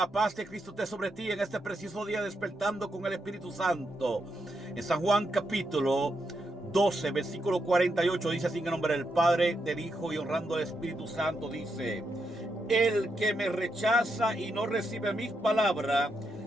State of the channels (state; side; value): normal; both; correlation 0.82